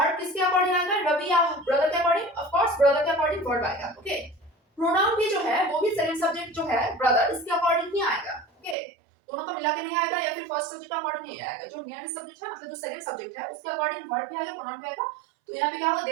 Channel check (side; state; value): left; drops out; at 8.8 s